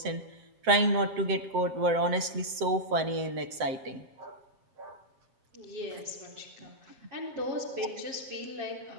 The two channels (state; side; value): late; left; 7.7 ms